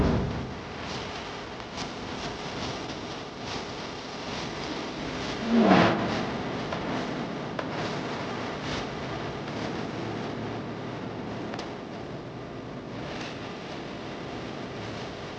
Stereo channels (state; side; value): identical; both; correlation 1.00